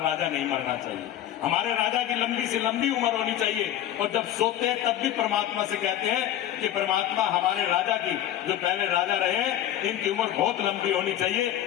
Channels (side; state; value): right; quieter; 11.8 dB